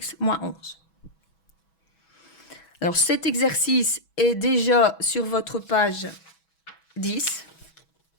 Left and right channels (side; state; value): right; late; 6.1 ms